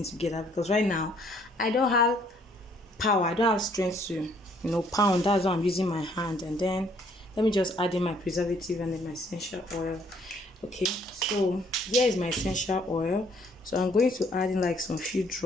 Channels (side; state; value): both; normal; correlation 0.64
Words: together, because right now I don't have power, I don't have strength to, you know, pound. That's why I'm using my hand. And then let me just add in my preservative and then my essential oil. Okay, so here is my essential oil. So I'm going to add in like some few